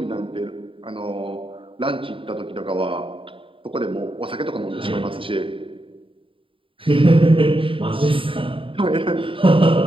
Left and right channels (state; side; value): late; left; 0.25 ms